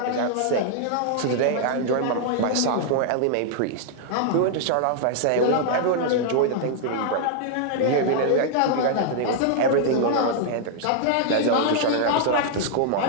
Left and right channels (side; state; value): both; different; correlation -0.01